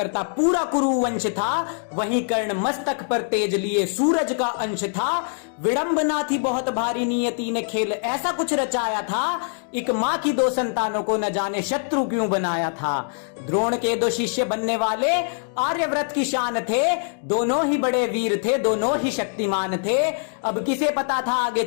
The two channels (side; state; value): right; silent; digital silence